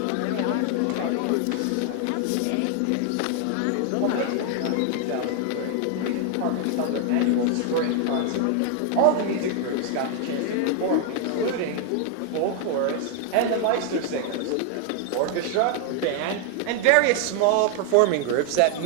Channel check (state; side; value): different; both; correlation 0.00